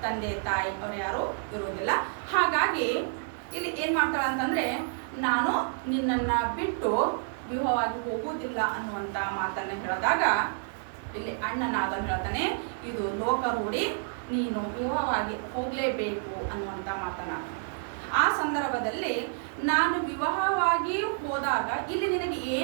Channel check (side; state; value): left; silent; digital silence